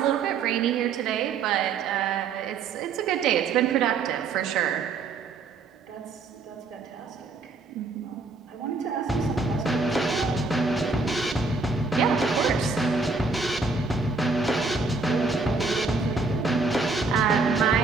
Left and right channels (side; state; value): left; quieter; 4.2 dB